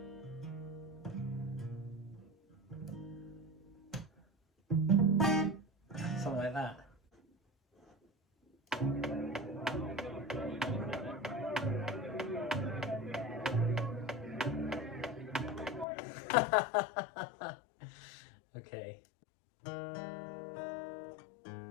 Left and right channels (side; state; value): right; drops out; at 15.9 s